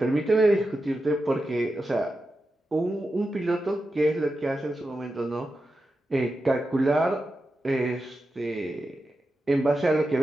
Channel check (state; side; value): normal; both; correlation 0.90